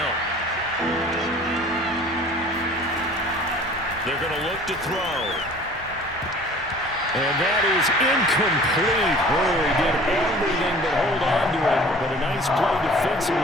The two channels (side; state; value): both; normal; correlation 0.47